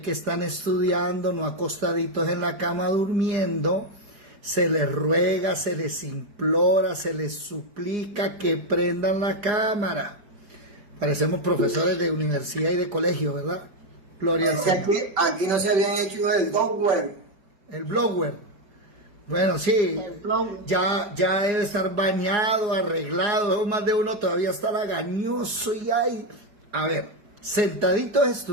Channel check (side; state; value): left; late; 4.9 ms